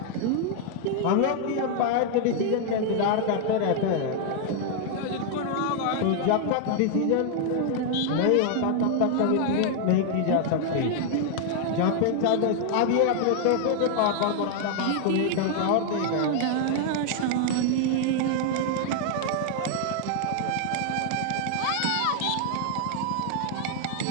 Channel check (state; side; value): different; both; correlation 0.00